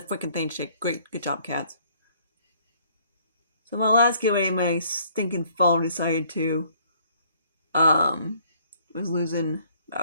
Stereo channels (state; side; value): inverted; both; correlation -0.62